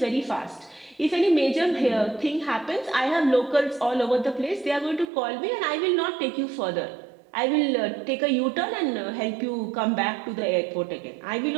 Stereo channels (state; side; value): drops out; left; at 5.1 s